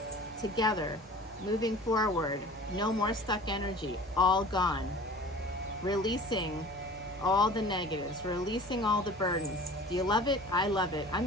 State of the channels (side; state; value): both; normal; correlation 0.43